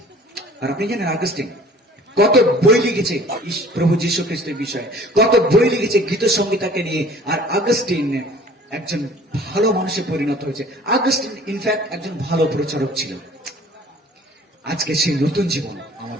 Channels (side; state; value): both; normal; correlation 0.49